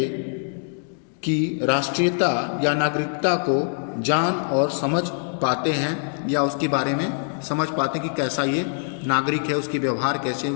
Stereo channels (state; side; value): silent; right; digital silence